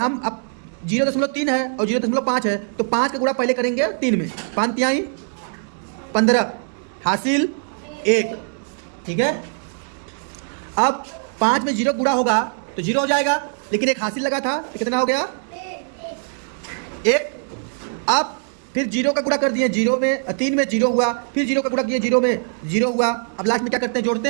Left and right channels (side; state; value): left; silent; 64 dB below the other